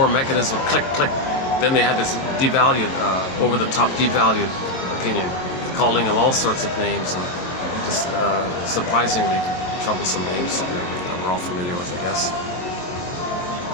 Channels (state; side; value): late; right; 22 ms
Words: mechanism click, then they had this devalued, over-the-top devalued opinion, calling him all sorts of names and just surprisingly troublesome names that we're all familiar with, I guess.